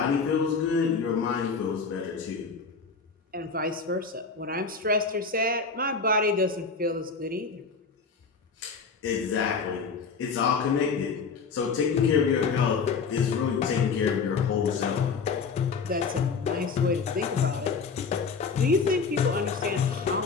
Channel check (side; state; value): right; quieter; 5.1 dB